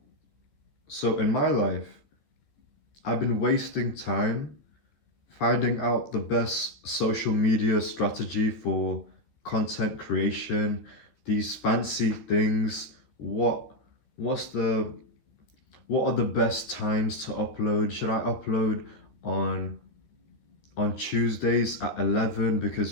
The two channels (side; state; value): right; late; 14 ms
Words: So in my life, I've been wasting time finding out the best social media strategy for content creation, these fancy things. What are the best times to upload? Should I upload on Tuesdays at 11 because